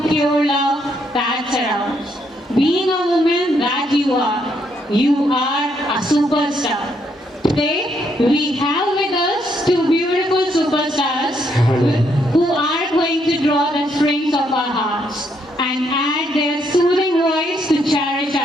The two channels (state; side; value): normal; both; correlation 0.74